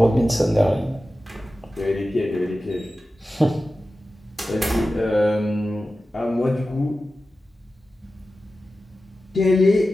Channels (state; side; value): normal; both; correlation 0.94